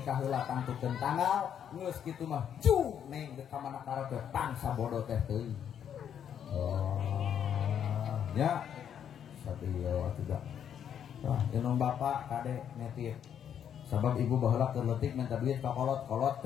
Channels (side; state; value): right; quieter; 8.9 dB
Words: heula tangtukeun tanggal geus kitu mah ju neng ka mana kara teh pangsa bodoh teh teuing. Oh. Ya. Sabieu atuh. Wah, inung bapak kade netip. Sabab ibu baheula keur leutik minta duit ka kolot